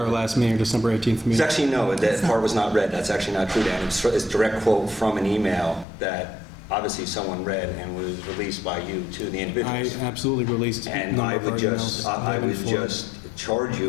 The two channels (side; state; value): right; drops out; at 5.9 s